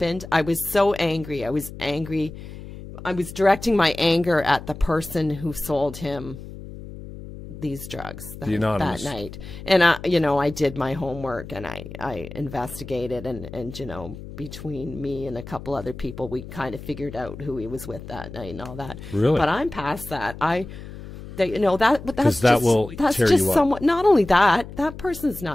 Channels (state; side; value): noise; left; hum, 13 dB below the sound